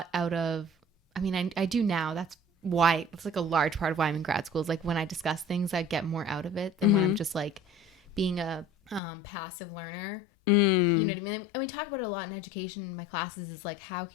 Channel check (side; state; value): right; drops out; at 9.0 s